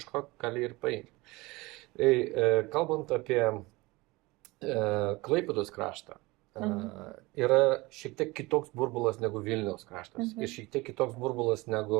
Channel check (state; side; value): quieter; left; 22.3 dB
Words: gali ir paimti. Kalbant apie Klaipėdos kraštą, yra šiek tiek kitoks burbulas negu Vilniaus kraštas ir šiek tiek kitoks burbulas